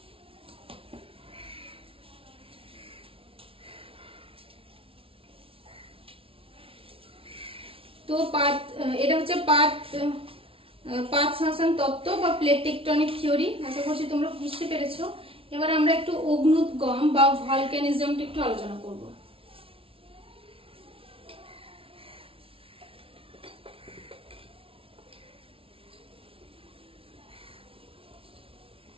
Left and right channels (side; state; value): left; late; 0.26 ms